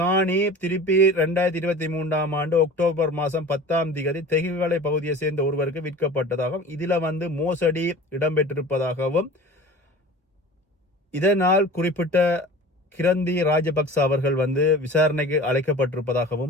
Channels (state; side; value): normal; both; correlation 0.39